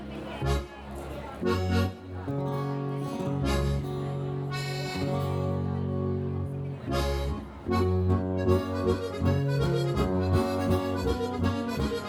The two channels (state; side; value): identical; both; correlation 1.00